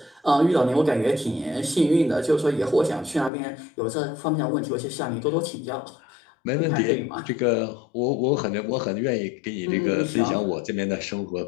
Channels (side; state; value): right; drops out; at 3.3 s